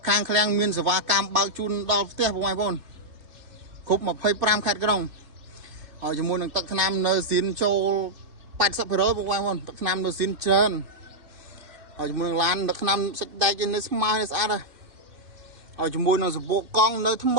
ខាងឃ្លាំងមានសេវាកម្មបើកជូនដល់ផ្ទះពុកម៉ែបងប្អូនគ្រប់25ខេត្តក្រុងហើយជាមួយនឹងទឹកថ្នាំនៅស៊ីនចូល 80% ពុកម៉ែបងប្អូនទឹកថ្នាំនៅស៊ីនច្រើនហើយជាមួយនឹងឡានទឹកថ្នាំសាច់ដែកនៅស្មើស្អាតហើយជាមួយនឹងសបកកង់នៅថ្ម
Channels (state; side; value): late; left; 2.5 ms